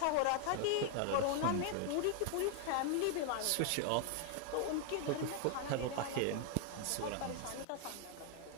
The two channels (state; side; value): different; both; correlation 0.00